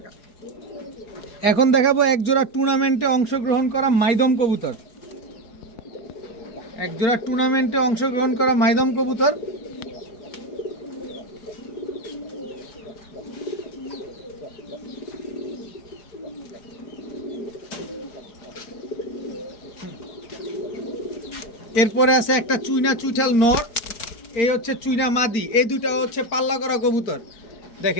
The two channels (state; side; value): late; right; 4.8 ms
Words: এখন দেখাবো এক জোড়া টুর্নামেন্টে অংশগ্রহণ করা মাইদম কবুতর, এক জোড়া টুর্নামেন্টে অংশগ্রহণ করা মাইদম কবুতর। এরপরে আছে একটা চুইনা চুইঠাল নর, এই হচ্ছে চুইনা মাদি। এই দুটা হচ্ছে পাল্লা করা কবুতর,